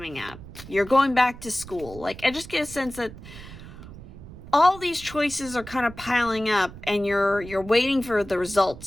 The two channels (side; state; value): right; noise; rumble, 15 dB below the sound